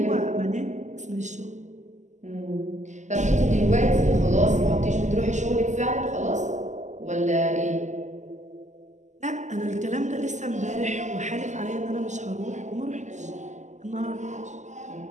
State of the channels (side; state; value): left; late; 0.34 ms